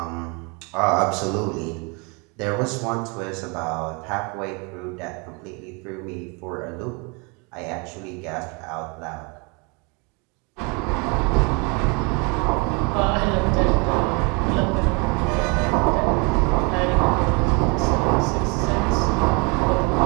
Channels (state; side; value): quieter; left; 31.1 dB